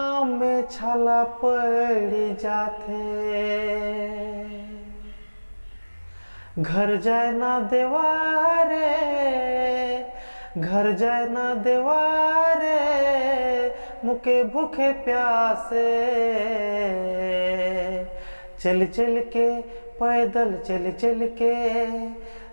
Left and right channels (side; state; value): both; inverted; correlation -1.00